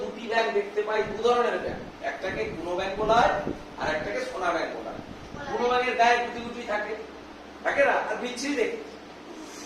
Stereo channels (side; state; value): both; identical; correlation 1.00